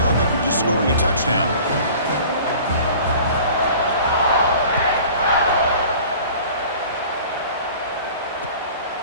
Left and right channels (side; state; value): both; inverted; correlation -0.45